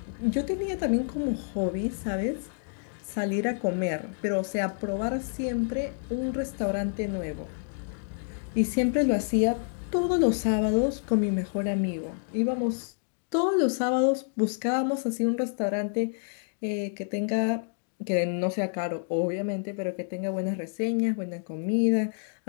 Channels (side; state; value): right; silent; digital silence